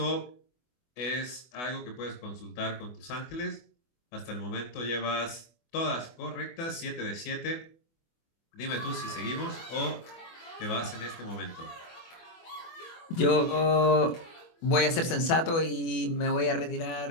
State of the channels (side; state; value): right; late; 24 ms